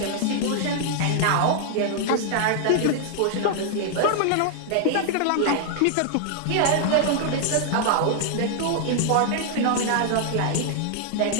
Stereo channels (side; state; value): both; different; correlation 0.00